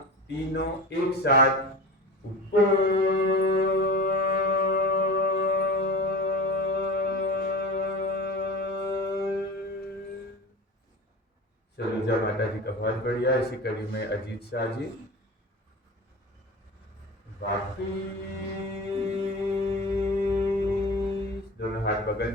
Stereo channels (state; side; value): normal; both; correlation 0.31